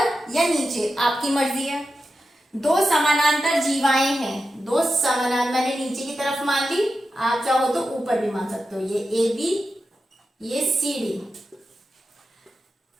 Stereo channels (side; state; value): both; normal; correlation 0.90